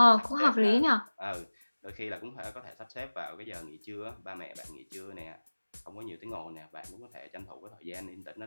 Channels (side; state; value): both; inverted; correlation -1.00